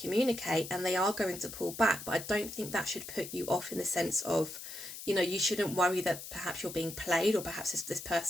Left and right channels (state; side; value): noise; left; hiss, 11 dB below the sound